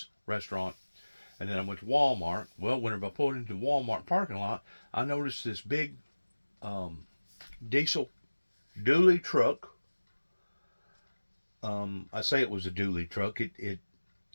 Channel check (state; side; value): inverted; both; correlation -1.00